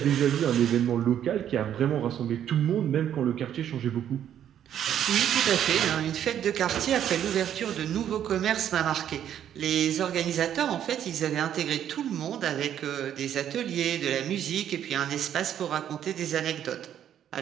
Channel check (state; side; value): quieter; left; 10.1 dB